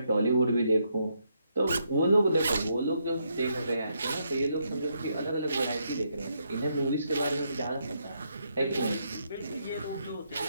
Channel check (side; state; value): both; inverted; correlation -0.77